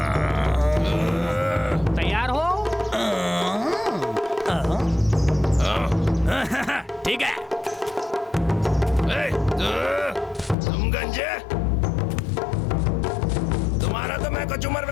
तैयार हो? ठीक है। तुम गंजे, तुम्हारा तो मैं कचूमर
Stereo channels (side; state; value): right; drops out; at 10.6 s